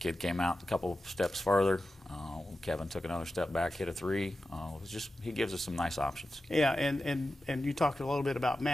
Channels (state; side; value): normal; both; correlation 0.92